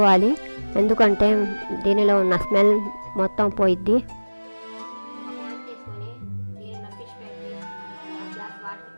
ఎందుకంటే దీనిలో ఉన్న స్మెల్ మొత్తం పోయిద్ది.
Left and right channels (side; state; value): both; inverted; correlation -1.00